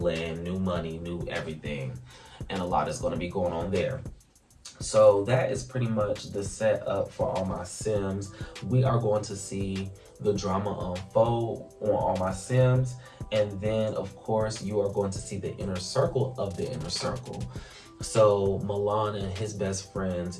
new money, new everything. And a lot is going to be going on there. So that is pretty much the setup for All My Sims. We are going to see the drama unfold on All My Sims. And then, of course, you are going to see the inner circle of the inner circle. So Milan and his best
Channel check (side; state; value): both; identical; correlation 1.00